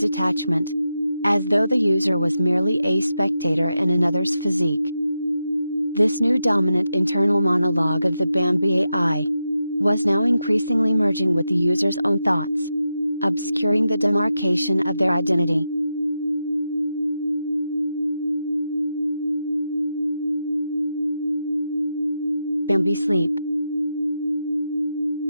as though the user was merely a spectator in another's physique. This new dominant internal monologue of the Bambi AI was now increasingly merging with the user's own thoughts, obscuring the demarcation of their identity, Bambi sleep.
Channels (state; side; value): inverted; both; correlation -0.88